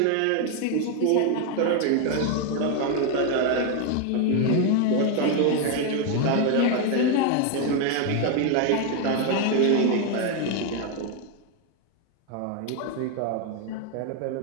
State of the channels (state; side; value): different; both; correlation 0.01